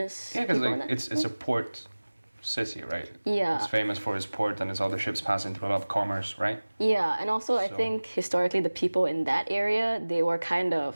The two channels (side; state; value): both; inverted; correlation -1.00